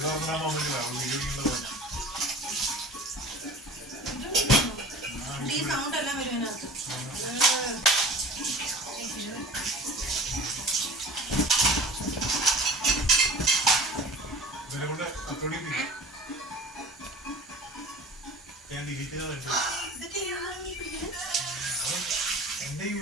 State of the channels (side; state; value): both; normal; correlation 0.39